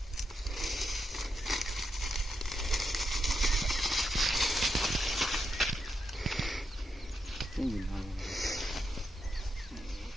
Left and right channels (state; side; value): normal; both; correlation 0.84